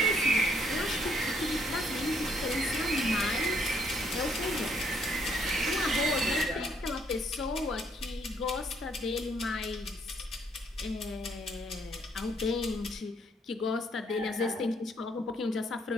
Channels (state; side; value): normal; both; correlation 0.68